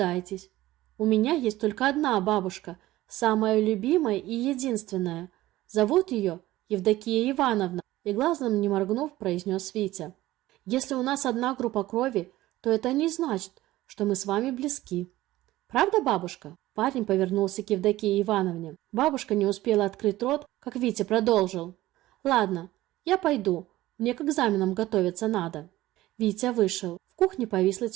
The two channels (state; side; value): quieter; left; 16.4 dB